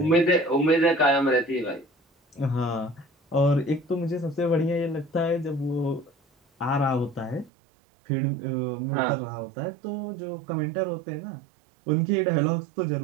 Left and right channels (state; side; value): drops out; left; at 7.5 s